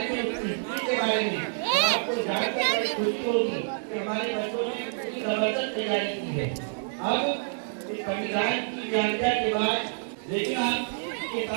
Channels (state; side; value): silent; left; digital silence